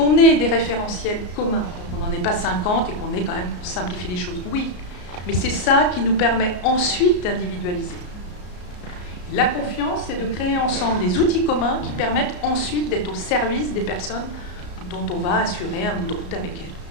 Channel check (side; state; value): right; late; 34 ms